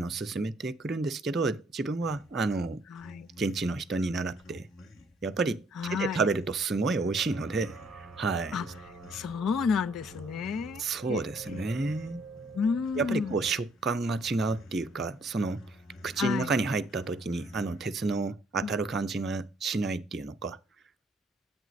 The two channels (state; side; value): normal; both; correlation 0.65